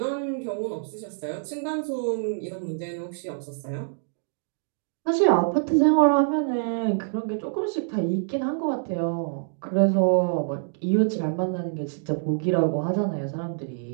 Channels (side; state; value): left; silent; digital silence